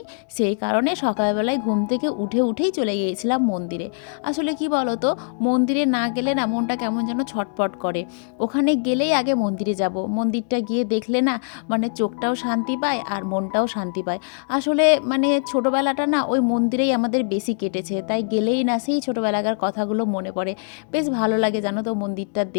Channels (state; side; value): silent; right; digital silence